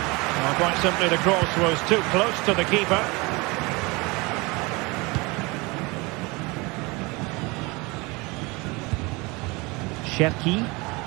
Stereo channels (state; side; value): quieter; left; 25.5 dB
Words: quite simply, the cross was too close to the keeper. Cherki.